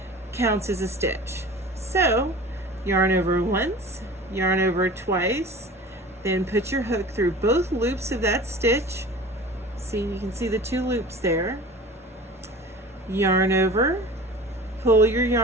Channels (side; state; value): both; normal; correlation 0.39